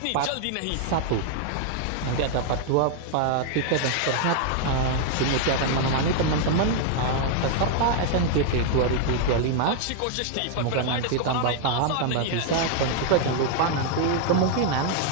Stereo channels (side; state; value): both; different; correlation 0.00